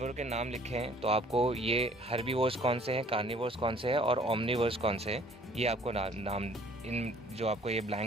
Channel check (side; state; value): both; normal; correlation 0.55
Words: के नाम लिखे हैं, तो आपको ये हर्बीवोर्स कौन से हैं, कार्निवोर्स कौन से हैं और ओमनिवोर्स कौन से हैं, ये आपको नाम इन जो आपको ये